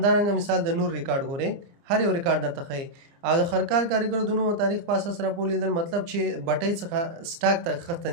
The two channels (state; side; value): late; left; 30 ms